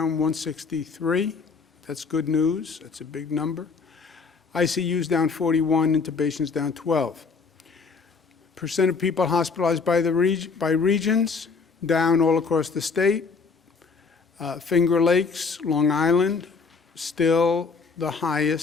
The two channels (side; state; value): right; quieter; 4.9 dB